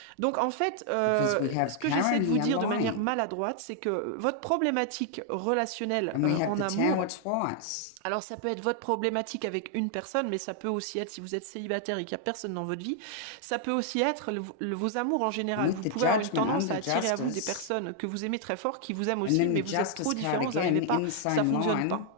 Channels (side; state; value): both; different; correlation 0.00